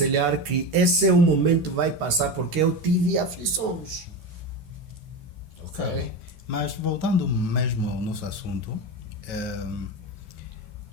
que esse é o momento que vai passar porque eu tive aflições. Ok. Mas voltando mesmo ao nosso assunto,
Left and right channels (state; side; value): late; left; 13 ms